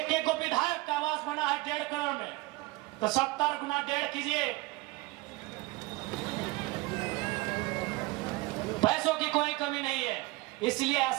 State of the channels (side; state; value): left; quieter; 21.9 dB